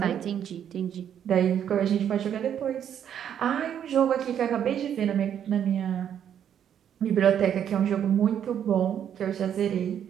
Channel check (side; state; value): left; quieter; 9.3 dB